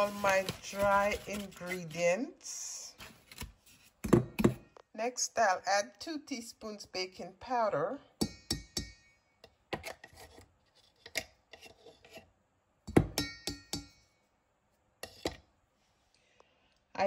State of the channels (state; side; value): identical; both; correlation 1.00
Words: my dry ingredients. Next, I'll add 2 teaspoons baking powder.